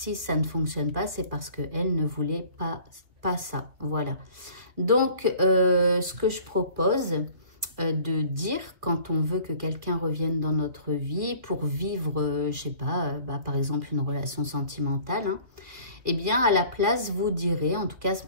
ça ne fonctionne pas, c'est parce qu'elle ne voulait pas ça. Voilà. Donc, ce que je propose de dire quand on veut que quelqu'un revienne dans notre vie pour vivre, je sais pas, par exemple une relation sentimentale, hein, eh bien à la place vous direz, en tout cas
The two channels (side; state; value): left; late; 2.6 ms